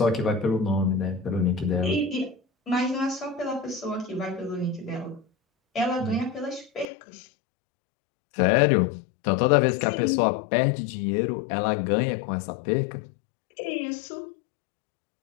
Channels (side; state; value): right; drops out; at 6.9 s